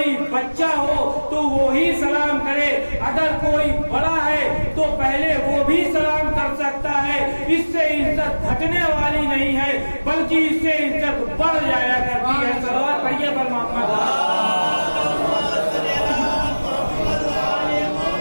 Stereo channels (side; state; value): both; inverted; correlation -1.00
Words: بچہ ہو تو وہی سلام کرے، اگر کوئی بڑا ہے تو پہلے وہ بھی سلام کر سکتا ہے، اس سے عزت گھٹنے والی نہیں ہے بلکہ اس سے عزت بڑھ جایا کرتی ہے۔ صلوات پڑھیے پر محمد۔